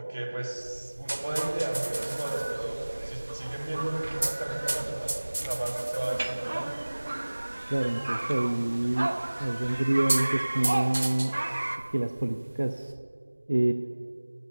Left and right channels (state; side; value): inverted; both; correlation -1.00